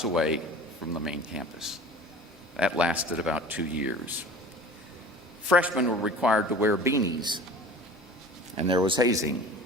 away from the main campus. That lasted about 2 years. Freshmen were required to wear beanies, and there was hazing.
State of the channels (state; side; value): normal; both; correlation 0.40